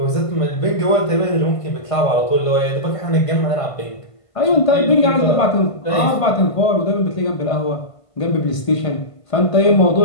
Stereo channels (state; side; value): late; right; 1.5 ms